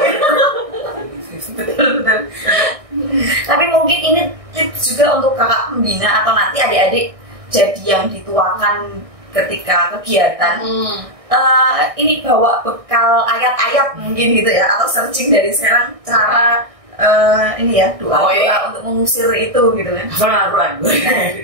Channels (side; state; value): left; late; 1.6 ms